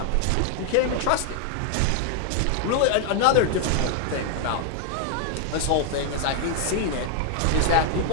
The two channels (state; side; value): different; both; correlation 0.00